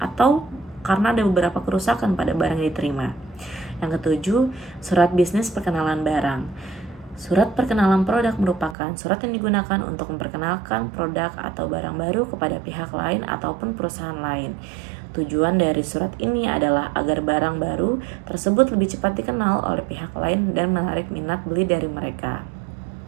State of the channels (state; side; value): drops out; left; at 8.8 s